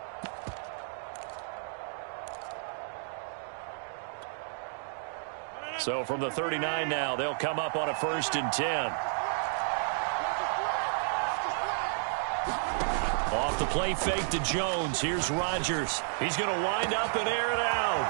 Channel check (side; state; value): left; silent; digital silence